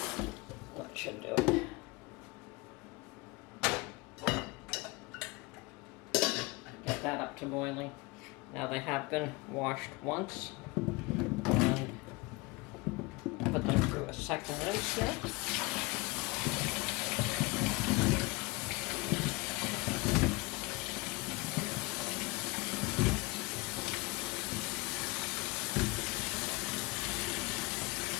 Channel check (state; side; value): quieter; right; 24.6 dB